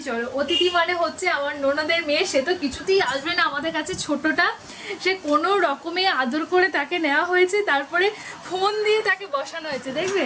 চলো। অতিথি মানে হচ্ছে আমার ননদের মেয়ে, সে তো কিছুতেই আসবে না আমাদের কাছে, ছোটটা। সে কোনো রকমে আদর করে তাকে নেওয়া হয়েছে, তারপরে ফোন দিয়ে তাকে বসানো হয়েছে। দেখবে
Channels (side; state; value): both; identical; correlation 1.00